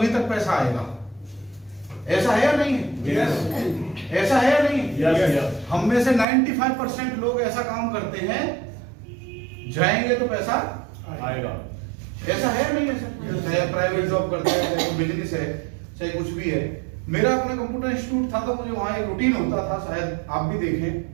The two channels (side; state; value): left; drops out; at 6.2 s